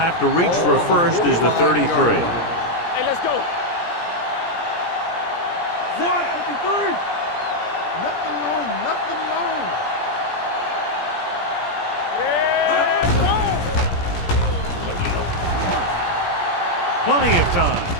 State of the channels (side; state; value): right; late; 17 ms